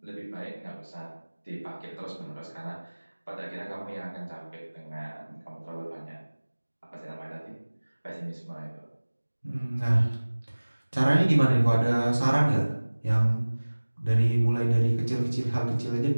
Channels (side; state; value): both; inverted; correlation -1.00